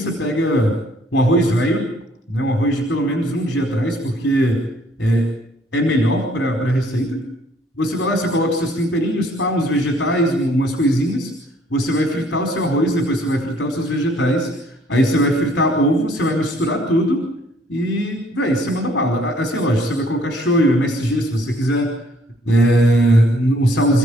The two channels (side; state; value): both; normal; correlation 0.61